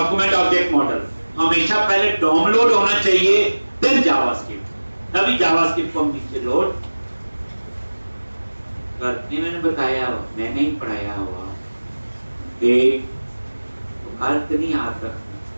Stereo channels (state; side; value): inverted; both; correlation -1.00